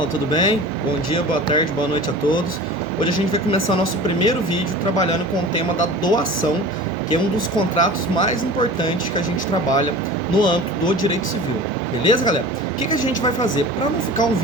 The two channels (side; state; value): both; normal; correlation 0.37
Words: tudo bem? Bom dia, boa tarde, boa noite a todos. Hoje a gente vai começar nosso primeiro vídeo trabalhando com o tema da doação, que é um dos contratos mais importantes que a gente trabalha no âmbito do direito civil. Beleza, galera? O que a gente vai fazer? Para não ficar um